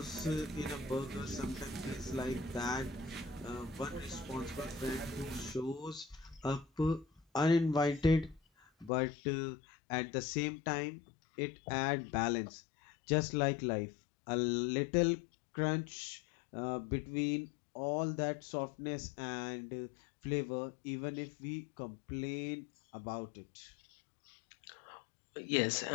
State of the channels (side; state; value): right; drops out; at 8.9 s